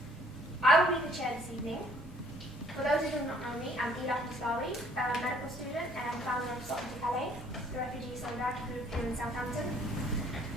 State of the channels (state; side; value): normal; both; correlation 0.60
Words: I will be the chair this evening. For those who do not know me, I'm Ila Muslawi, a medical student and founder of Salt to Calais, the refugee solidarity group here in Southampton.